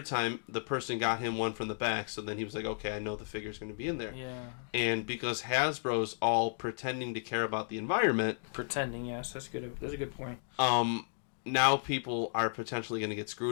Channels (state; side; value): silent; right; digital silence